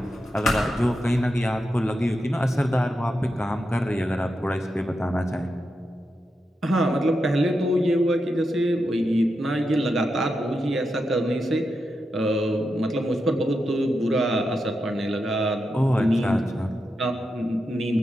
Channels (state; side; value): normal; both; correlation 0.87